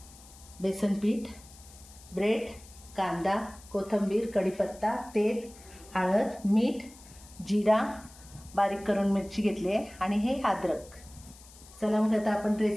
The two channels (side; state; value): left; noise; hiss, 21 dB below the sound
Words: बेसन पीठ, ब्रेड, कांदा, कोथिंबीर, कढीपत्ता, तेल, हळद, मीठ, जिरा, बारीक करून मिरची घेतली आहे आणि हे अद्रक। चला मग आता आपण